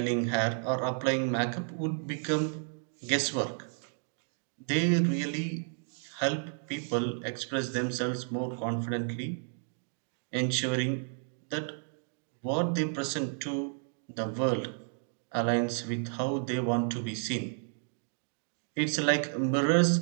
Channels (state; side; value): silent; left; 56 dB below the other